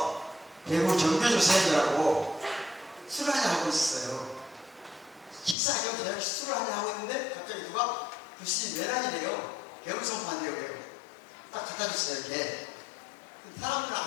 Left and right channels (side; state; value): right; drops out; at 5.6 s